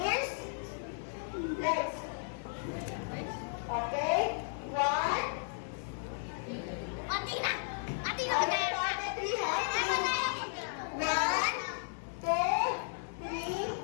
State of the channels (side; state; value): right; silent; 55 dB below the other